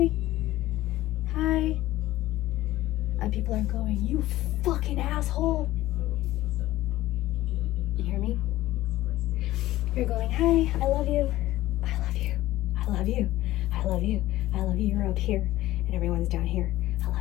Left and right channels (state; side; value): quieter; right; 15.8 dB